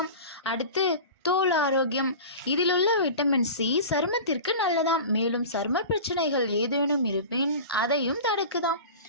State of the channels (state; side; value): inverted; both; correlation -0.34